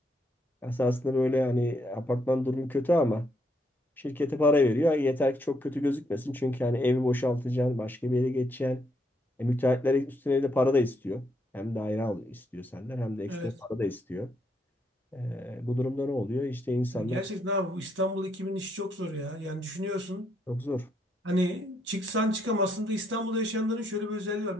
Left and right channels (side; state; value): both; normal; correlation 0.75